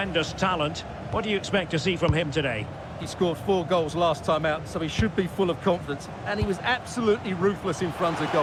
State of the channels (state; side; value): identical; both; correlation 1.00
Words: talent. What do you expect to see from him today? He scored 4 goals last time out, so he should be full of confidence. And he was absolutely ruthless in front of